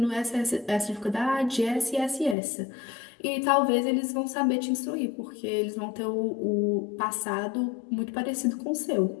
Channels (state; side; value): drops out; right; at 2.4 s